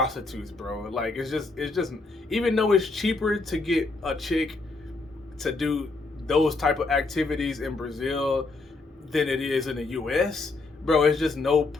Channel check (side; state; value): right; quieter; 3.6 dB